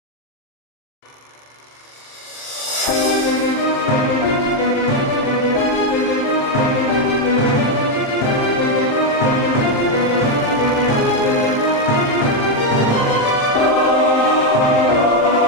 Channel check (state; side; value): late; right; 27 ms